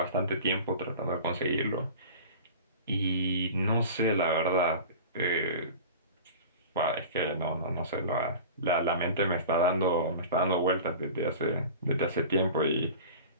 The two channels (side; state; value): both; inverted; correlation -0.37